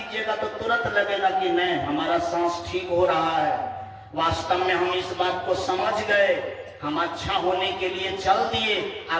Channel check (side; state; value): both; identical; correlation 1.00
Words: तो तुरंत लगेगा कि नहीं, हमारा सांस ठीक हो रहा है। वास्तव में हम इस बात को समझ गए, हम अच्छा होने के लिए चल दिए।